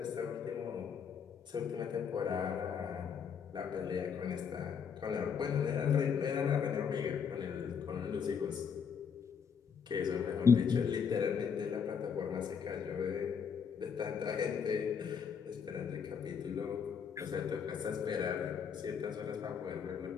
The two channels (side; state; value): right; quieter; 6.8 dB